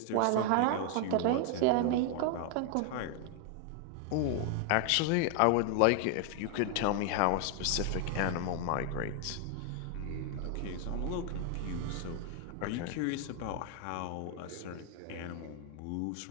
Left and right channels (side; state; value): both; different; correlation 0.00